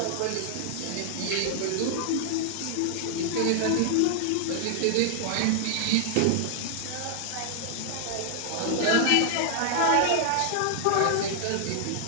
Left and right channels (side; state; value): both; different; correlation 0.00